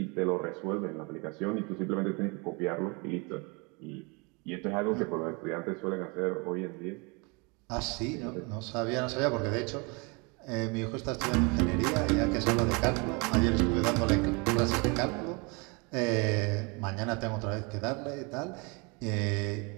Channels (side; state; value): left; quieter; 30.3 dB